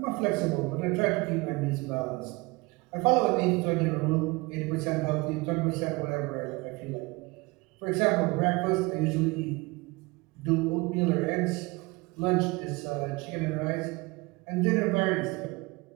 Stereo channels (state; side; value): quieter; left; 24.8 dB